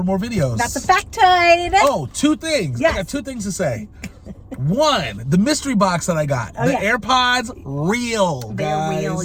more videos. That's a factoid. Oh, 2 things. Yes. I got 2 things to say. 1, the mystery box that I got. The AirPods, real, guys. They're real,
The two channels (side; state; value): both; identical; correlation 1.00